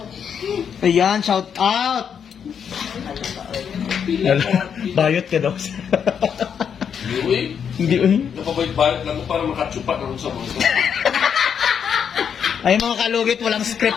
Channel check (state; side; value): quieter; right; 7.6 dB